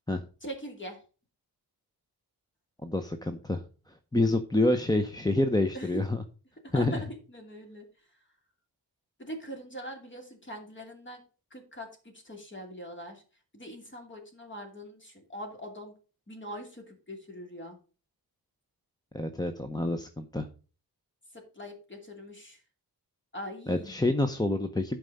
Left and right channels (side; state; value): both; normal; correlation 0.74